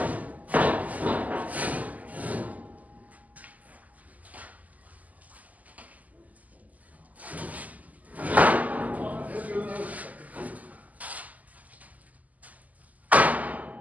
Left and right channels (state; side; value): late; left; 0.077 ms